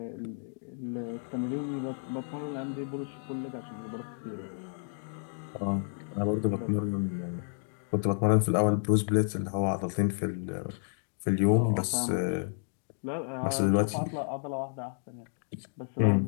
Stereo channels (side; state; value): right; silent; digital silence